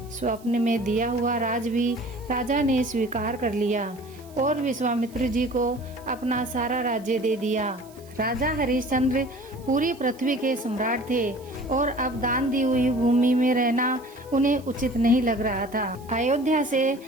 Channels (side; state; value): right; noise; hiss, 25 dB below the sound